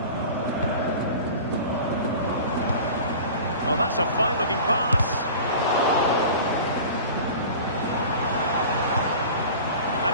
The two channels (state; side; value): inverted; both; correlation -0.38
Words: Oh, that's a fine-looking pass. And